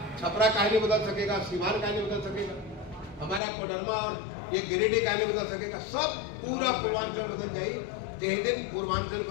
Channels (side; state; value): right; drops out; at 3.4 s